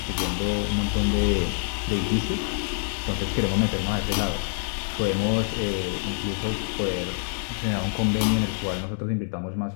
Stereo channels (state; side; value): silent; right; digital silence